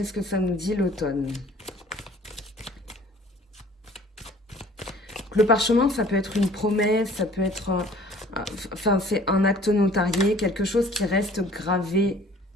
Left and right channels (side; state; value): both; normal; correlation 0.52